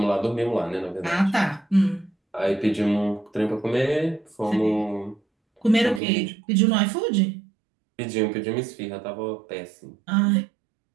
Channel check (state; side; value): drops out; left; at 6.0 s